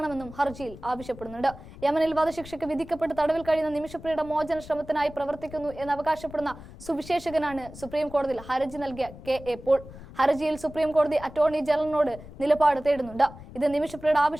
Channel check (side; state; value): left; noise; rumble, 16 dB below the sound